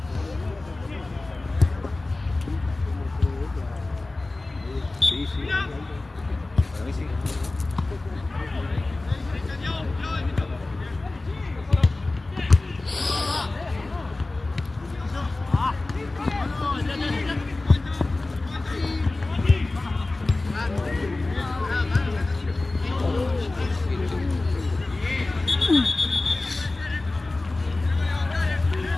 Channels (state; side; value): quieter; right; 3.1 dB